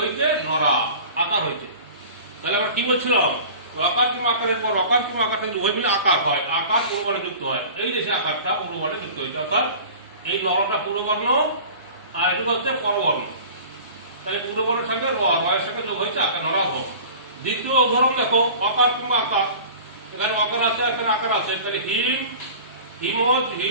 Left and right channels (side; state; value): both; inverted; correlation -0.40